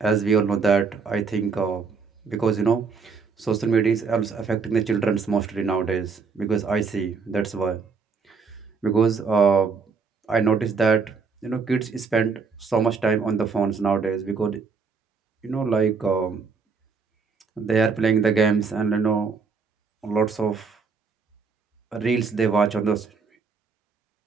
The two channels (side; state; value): left; quieter; 5.1 dB